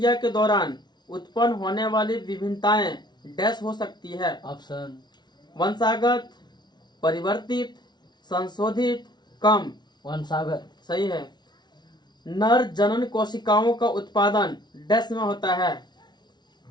के दौरान उत्पन्न होने वाली विभिन्नताएं डैश हो सकती है? ऑप्शन वंशागत, परिवर्तित, संशोधित, कम। वंशागत। सही है। नर जनन कोशिकाओं का उत्पादन डैश में होता है?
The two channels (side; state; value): right; late; 0.20 ms